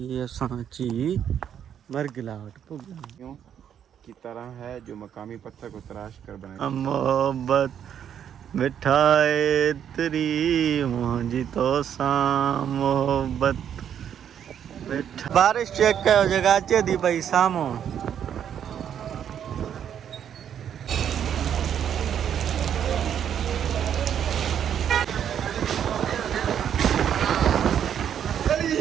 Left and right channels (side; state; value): left; quieter; 9.1 dB